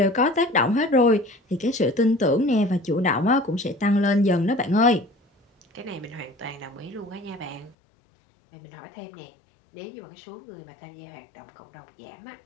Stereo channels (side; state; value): right; drops out; at 7.8 s